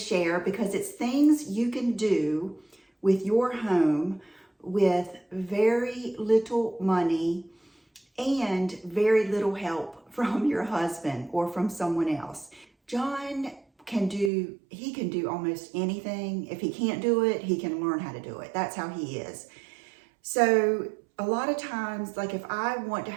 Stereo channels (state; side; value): drops out; left; at 14.3 s